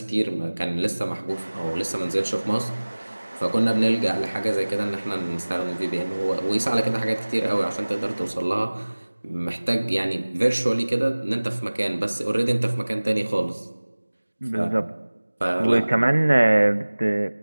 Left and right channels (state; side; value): inverted; both; correlation -1.00